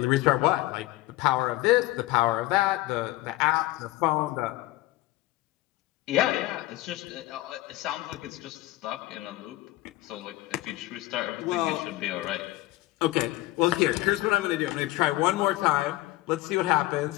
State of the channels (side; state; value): right; quieter; 18.0 dB